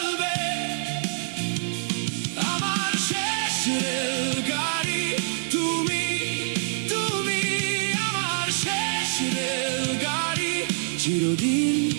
আমার শেষ রেলগাড়ি তুমি, তুমি আমার শেষ রেলগাড়ি। চিরদিন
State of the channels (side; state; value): left; silent; digital silence